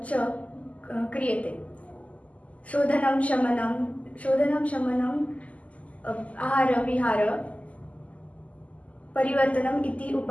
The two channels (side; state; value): right; late; 0.070 ms